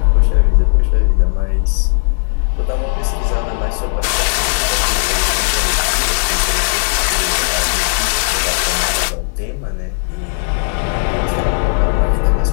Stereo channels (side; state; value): right; silent; 69 dB below the other